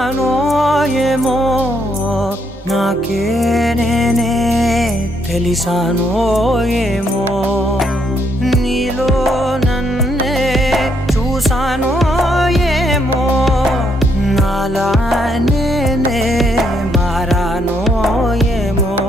ఏమో నాకే నేనే తెలిసానో ఏమో నీలో నన్నే చూసానో ఏమో నాలా నేనే మారానో ఏమో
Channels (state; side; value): normal; both; correlation 0.74